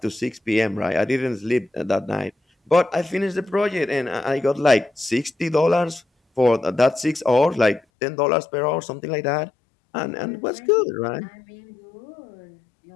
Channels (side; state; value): right; drops out; at 7.8 s